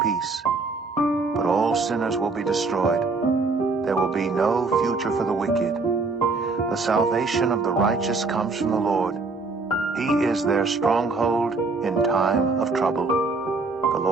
peace. But all sinners will be destroyed. There will be no future for the wicked. The salvation of the righteous comes from the Lord. He is their stronghold in time of trouble. The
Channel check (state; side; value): quieter; left; 3.9 dB